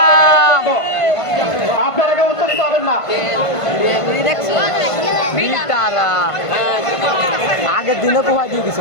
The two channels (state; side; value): late; right; 1.5 ms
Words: আপনারা উত্তরিত হবেন না। আগের দিনে কোথায় দিয়ে